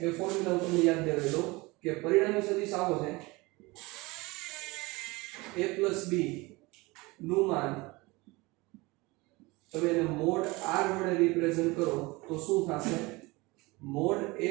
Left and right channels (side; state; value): left; quieter; 23.4 dB